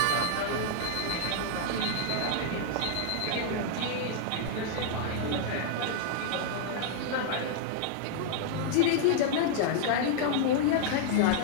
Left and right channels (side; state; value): both; different; correlation -0.01